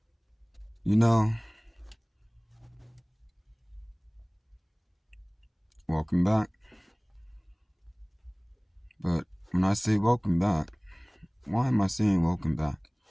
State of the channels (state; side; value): identical; both; correlation 1.00